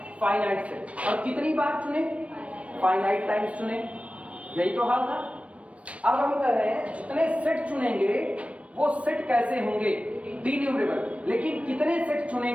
फाइनाइट सेट, और कितनी बार चुने, फाइनाइट टाइम्स चुने, यही तो हाल था। अब हम कह रहे हैं जितने सेट चुनेंगे वो सेट कैसे होंगे, डिन्यूमरेबल, लेकिन कितने सेट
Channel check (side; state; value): left; late; 0.063 ms